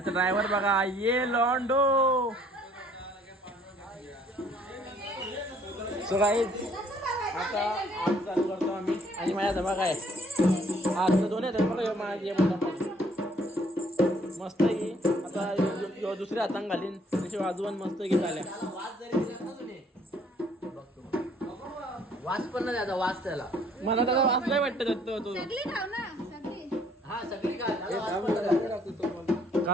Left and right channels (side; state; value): both; normal; correlation 0.61